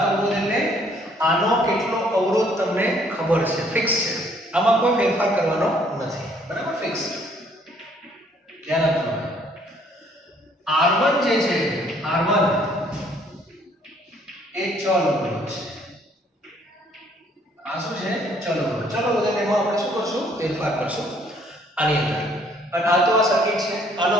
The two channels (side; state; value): both; normal; correlation 0.63